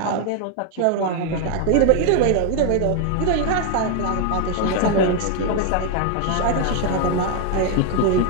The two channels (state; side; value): different; both; correlation 0.01